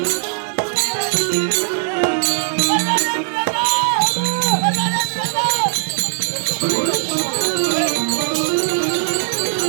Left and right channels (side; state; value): left; silent; digital silence